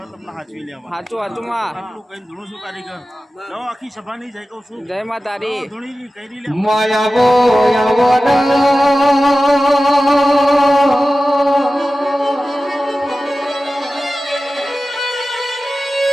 તમને હાચવી લેવા આટલું કઈ ધૂણું છું કારીગર લો આખી સભાની જય કહું છું જય માતારી માયાવો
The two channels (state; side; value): normal; both; correlation 0.95